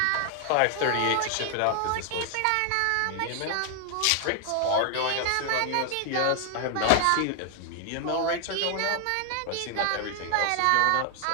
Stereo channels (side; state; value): both; different; correlation 0.00